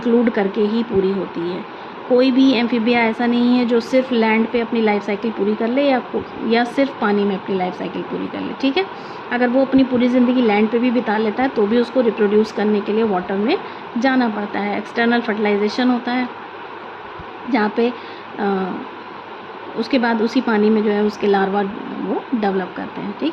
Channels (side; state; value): both; identical; correlation 1.00